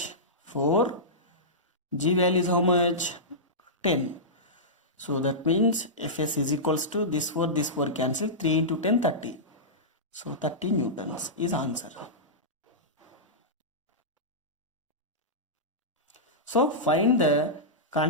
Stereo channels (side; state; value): both; normal; correlation -0.15